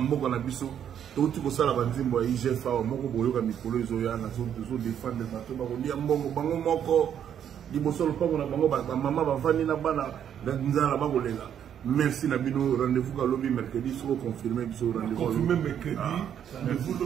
na biso to ti ko sala banzimbo ya IGFA moko boyoka mikolo ezoya na zo défendre bato ba kolia mbongo bango moko liboso lopango na bango ba mama bavandi na bana nzala ba kolela. Merci Nabino, rendez-vous à lobby mercredi, soit confirmé sur rendez-vous. Confirmé mercredi, rendez-vous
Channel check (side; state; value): left; quieter; 9.2 dB